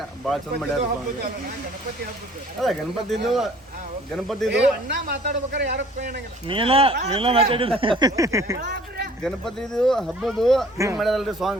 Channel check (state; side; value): normal; both; correlation 0.53